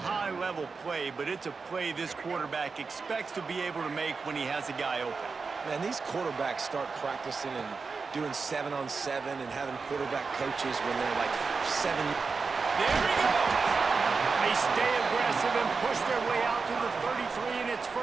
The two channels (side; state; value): left; quieter; 4.7 dB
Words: high-level play, but it's a play this quarterback expects to be able to make when he has a guy open. Man, these quarterbacks start practicing and doing 7-on-7 and having quarterback coaches when they're like 7. There he goes! They stay aggressive and push their way out to the 33, and it's